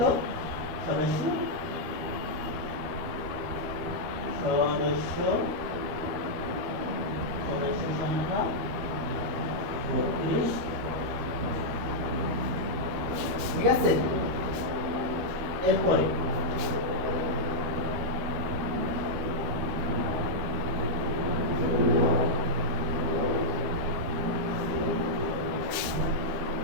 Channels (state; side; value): late; left; 13 ms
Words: সদস্য সংখ্যা 32, ঠিক আছে। এরপরে